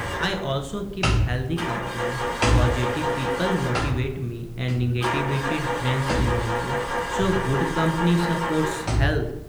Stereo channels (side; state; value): both; identical; correlation 1.00